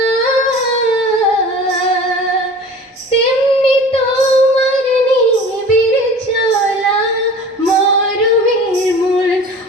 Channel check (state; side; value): normal; both; correlation 0.41